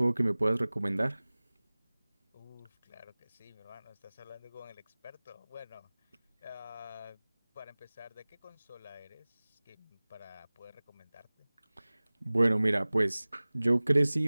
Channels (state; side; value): inverted; both; correlation -1.00